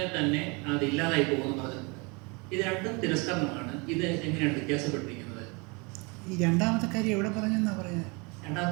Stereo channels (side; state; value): left; quieter; 29.4 dB